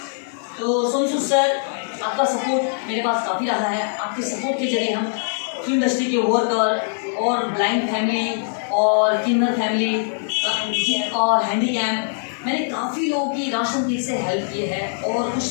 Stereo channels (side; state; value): right; silent; digital silence